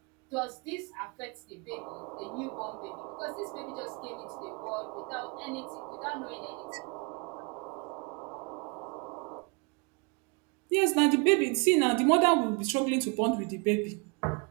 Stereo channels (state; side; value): quieter; left; 33.0 dB